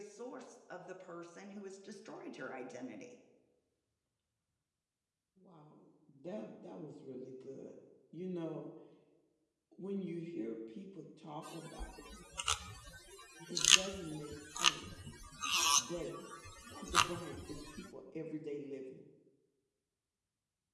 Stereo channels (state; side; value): identical; both; correlation 1.00